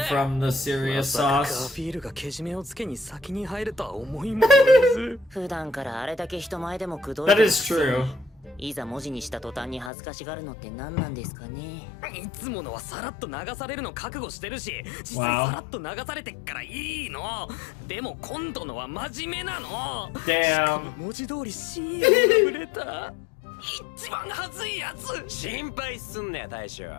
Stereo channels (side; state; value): right; drops out; at 9.9 s